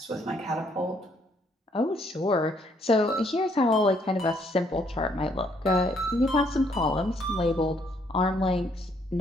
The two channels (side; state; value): both; normal; correlation 0.68